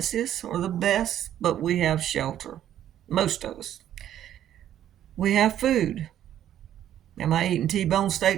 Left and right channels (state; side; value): quieter; left; 11.2 dB